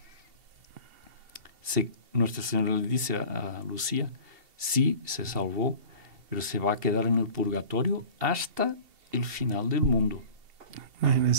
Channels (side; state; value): left; late; 2.7 ms